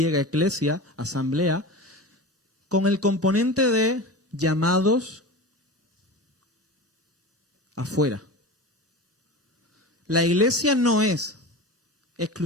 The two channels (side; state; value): both; normal; correlation 0.29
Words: eclesia, asamblea, con el componente de llamados afuera. La iglesia no es